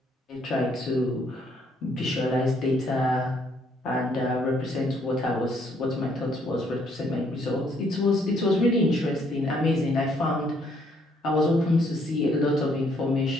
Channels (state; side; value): normal; both; correlation 0.68